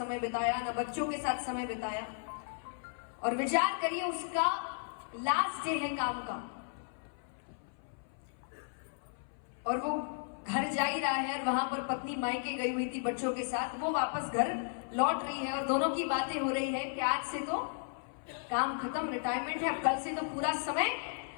बिताया, ना बच्चों के साथ समय बिताया। और विचार करिए, उसका लास्ट डे है काम का और वो घर जा ही रहा है, और वहां पर पत्नी मायके गई हुई थी बच्चों के साथ, वो वापस घर लौट रही है और दोनों की बातें हो रही है कि आज से तो काम खत्म, रिटायरमेंट है, अब कल से तो पूरा समय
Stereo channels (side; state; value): right; silent; 55 dB below the other